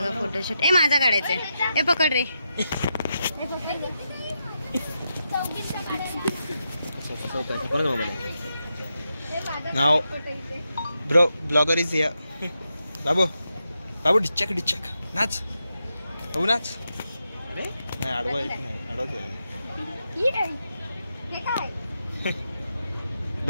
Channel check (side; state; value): both; inverted; correlation -0.86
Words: फोटोशूट। ए माझा काढायचंय। ए पकड रे। नाव ब्रो ब्लॉगर इज हियर। बाबू बाबू डिचक डिचक नाच। बाबू नाच। अरे नाही आडवा येत नाही। आडवा